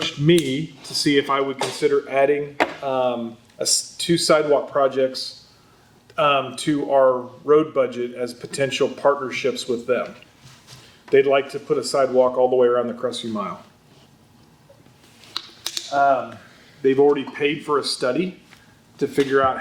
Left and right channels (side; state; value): both; identical; correlation 1.00